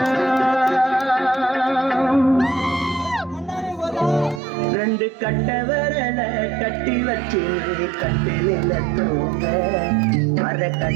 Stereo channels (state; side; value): drops out; left; at 4.4 s